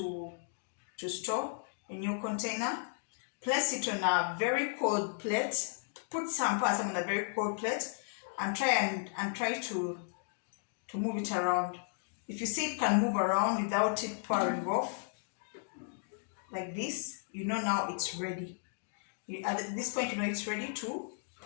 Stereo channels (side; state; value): right; silent; digital silence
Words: store in your container. Place it on a very cold plate. Put some on a very cold plate and try to move it around. If you see it can move around without it pouring off like this, you know now it's ready. At this point, you know it's ready to